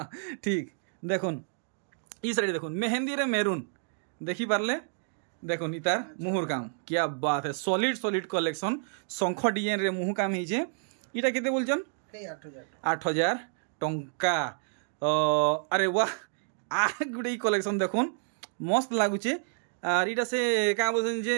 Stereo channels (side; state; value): left; silent; digital silence